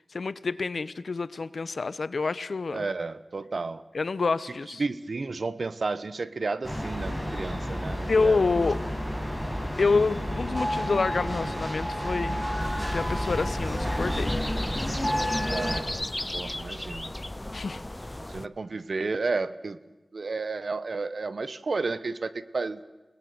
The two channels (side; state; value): both; normal; correlation 0.95